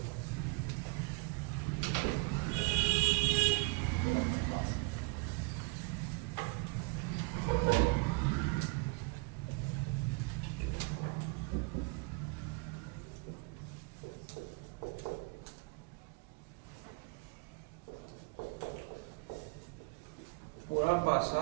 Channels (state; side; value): quieter; left; 29.2 dB